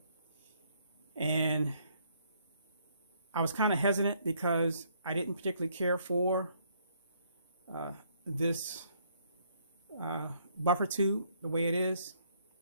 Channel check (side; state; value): both; inverted; correlation -0.68